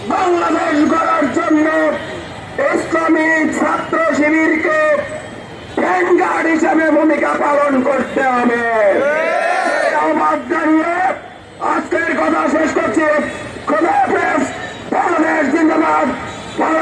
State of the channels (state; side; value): identical; both; correlation 1.00